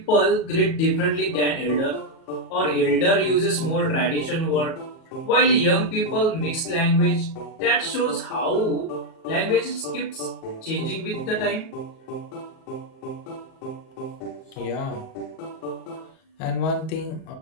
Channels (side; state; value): right; late; 37 ms